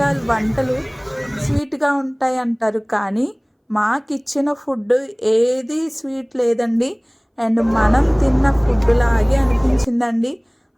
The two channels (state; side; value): identical; both; correlation 1.00